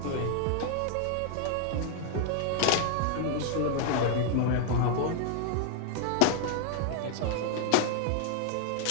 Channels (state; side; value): different; both; correlation 0.00